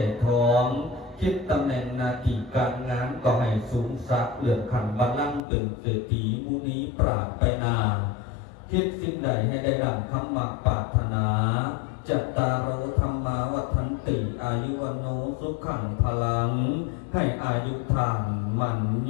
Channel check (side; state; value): right; drops out; at 5.4 s